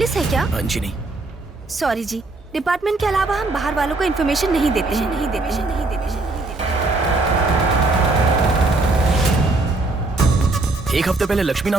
है क्या? जी नहीं। सॉरी जी, डिपार्टमेंट के अलावा हम बाहर वालों को इन्फॉर्मेशन नहीं देते हैं। एक हफ्ते पहले लक्ष्मी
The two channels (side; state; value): left; quieter; 3.2 dB